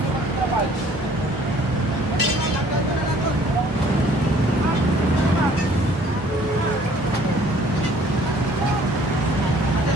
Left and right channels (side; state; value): both; normal; correlation 0.56